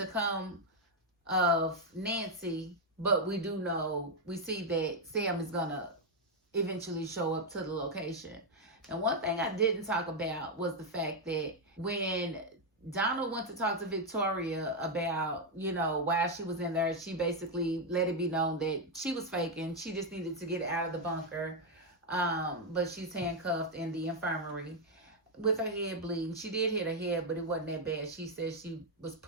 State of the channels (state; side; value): normal; both; correlation 0.01